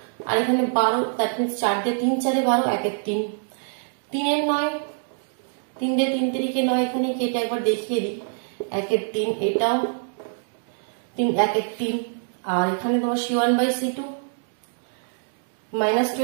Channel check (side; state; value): left; silent; digital silence